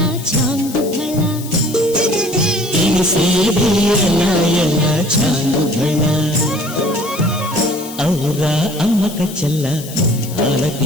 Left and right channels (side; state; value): left; noise; hiss, 14 dB below the sound